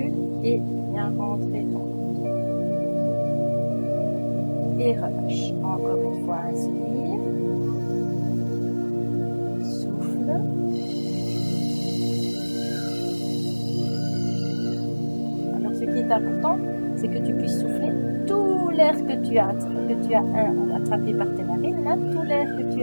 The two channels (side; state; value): both; inverted; correlation -1.00